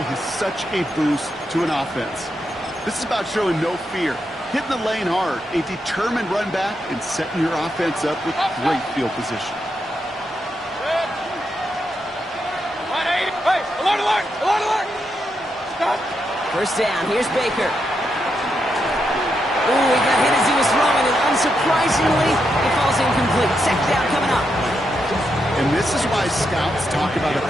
is such a boost to an offense. This is about showing no fear, hitting the lane hard, a determined run back, and setting your offense up with great field position. First down, here's Baker. Ooh, he got hit as he was throwing, and unsurprisingly, it falls incomplete. Second down coming up. And this is why scouts talk about a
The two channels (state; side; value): normal; both; correlation 0.83